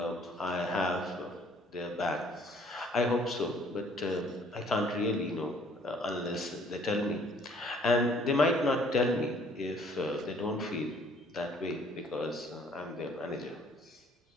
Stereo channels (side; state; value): both; normal; correlation 0.59